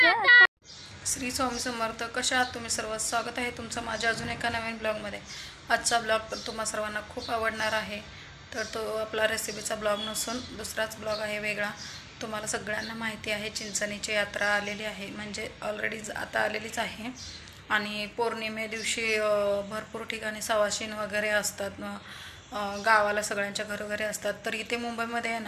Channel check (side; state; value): both; identical; correlation 1.00